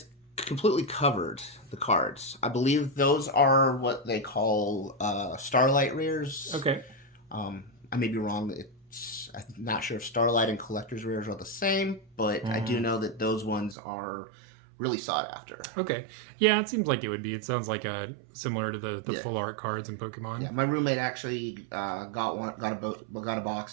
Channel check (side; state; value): left; drops out; at 13.8 s